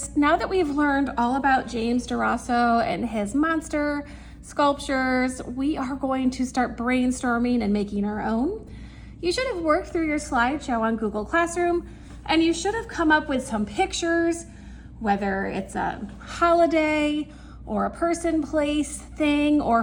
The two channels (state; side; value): identical; both; correlation 1.00